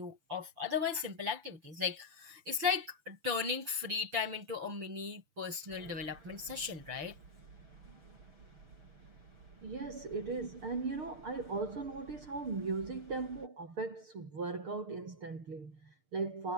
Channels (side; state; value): left; late; 6.7 ms